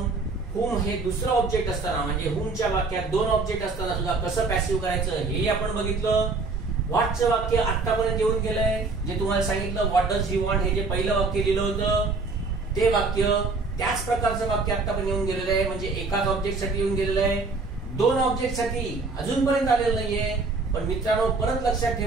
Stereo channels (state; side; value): quieter; left; 3.9 dB